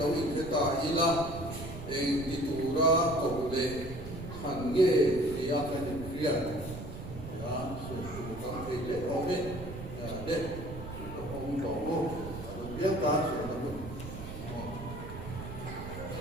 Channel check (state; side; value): noise; right; rumble, 10 dB below the sound